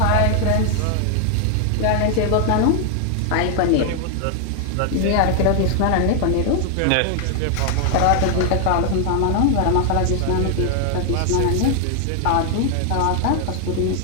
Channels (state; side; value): different; both; correlation 0.00